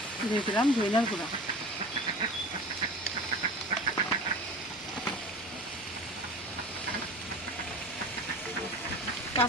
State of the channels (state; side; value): normal; both; correlation 0.36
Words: দিয়ে দিলাম ধনিয়ার গুঁড়া,